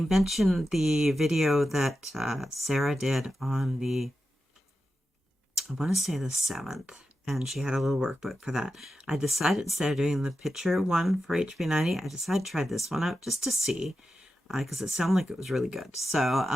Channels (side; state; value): both; normal; correlation 0.90